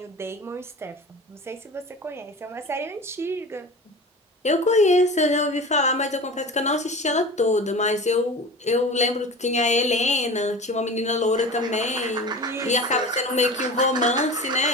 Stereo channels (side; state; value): both; normal; correlation 0.34